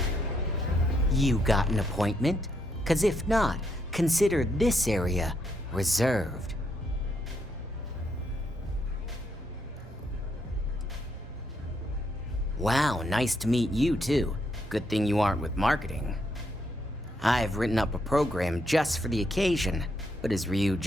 You got an appointment? 'Cause if not, consider this area reserved. Wow, nice to meet you too. Good thing you aren't with marketing. I've written up a program just for the occasion, but as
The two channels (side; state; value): both; normal; correlation 0.76